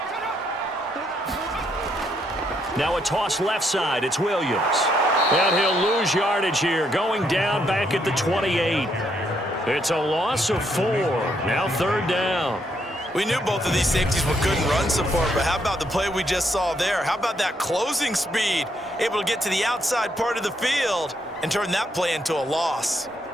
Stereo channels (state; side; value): normal; both; correlation 0.74